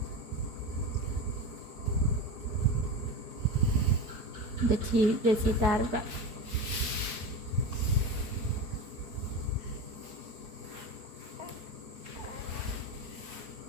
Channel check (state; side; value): late; left; 4.7 ms